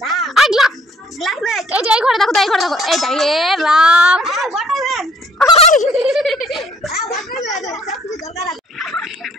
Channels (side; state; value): both; normal; correlation 0.61